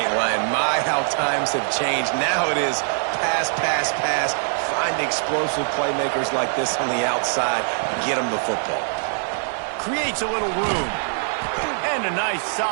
lying. My, how times have changed. Now it is pass, pass, pass. Find explosive playmakers like this on the outside. Get them the football. Creates a little room. And a nice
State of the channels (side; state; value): left; silent; digital silence